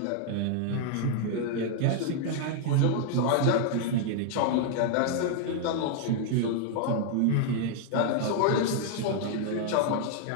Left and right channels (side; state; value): both; different; correlation 0.00